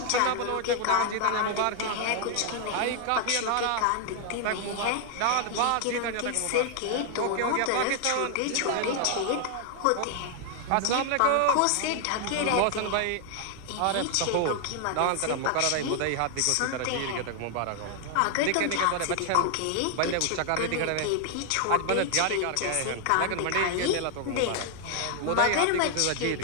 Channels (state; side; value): different; both; correlation 0.00